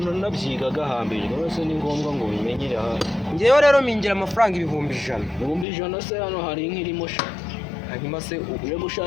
hambere rwose ni ngombwa ngo bimenyere aha. Ngewe rero mingira amafaranga 1,100. 1,100 se hano hari nk'irimo sha. Hanyuma se uje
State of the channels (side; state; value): right; drops out; at 5.7 s